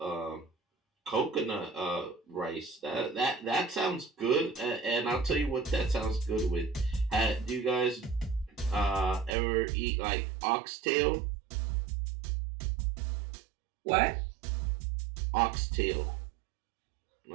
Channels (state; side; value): drops out; left; at 9.3 s